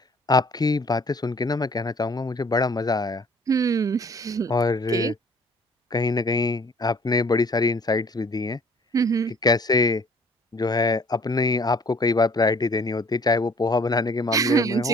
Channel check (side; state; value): both; normal; correlation 0.55